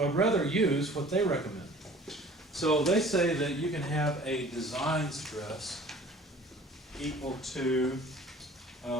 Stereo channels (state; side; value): normal; both; correlation 0.48